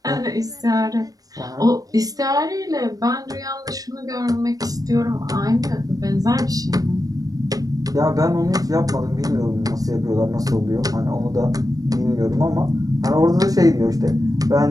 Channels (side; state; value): left; late; 0.18 ms